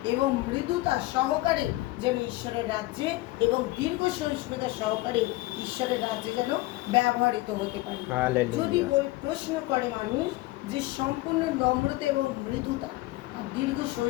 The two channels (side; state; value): right; quieter; 19.2 dB